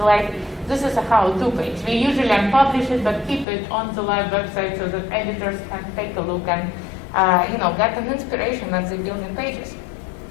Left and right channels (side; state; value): right; drops out; at 3.5 s